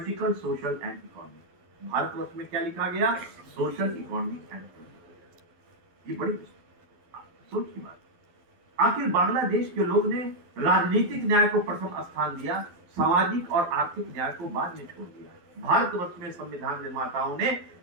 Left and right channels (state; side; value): late; left; 12 ms